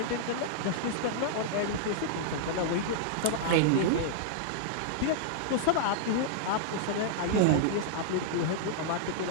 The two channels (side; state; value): both; different; correlation -0.01